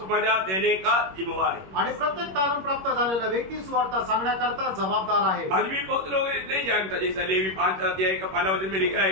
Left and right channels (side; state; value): left; late; 21 ms